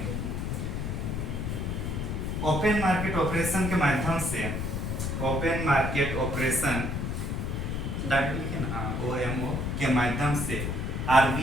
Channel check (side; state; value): left; noise; rumble, 2 dB below the sound